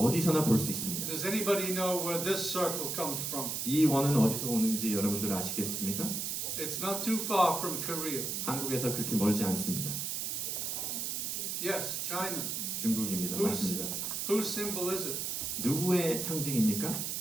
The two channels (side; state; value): right; noise; hiss, 2 dB below the sound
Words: 볼 수 있습니다. Does anybody know where this circle comes from? 이 원은 어디서 오는지 여러분들 아시겠습니까? It's not too far from Korea. 한국에서 그렇게 멀지 않습니다. Yes, China. 중국입니다. 맞습니다. Whose symbol is it? 누구의 상징입니까?